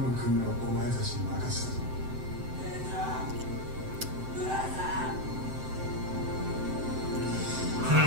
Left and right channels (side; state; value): left; late; 7.8 ms